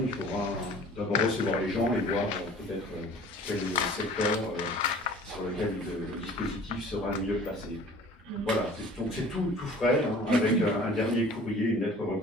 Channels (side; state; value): both; normal; correlation 0.47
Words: il faudra d'abord recevoir les gens et voir peut-être quel secteur sur lequel le dispositif sera le mieux placé. Voilà, donc c'est tout frais, hein, avec un dernier courrier, une lettre